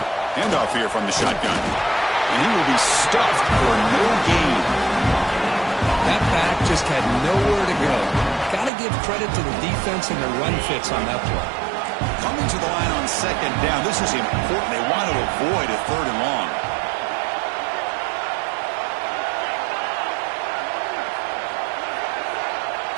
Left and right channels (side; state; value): left; drops out; at 8.7 s